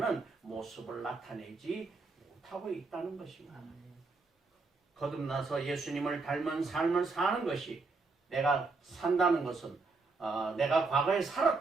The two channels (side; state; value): left; quieter; 3.9 dB